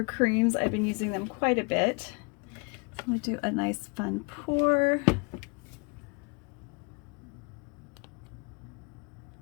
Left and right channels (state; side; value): quieter; right; 33.0 dB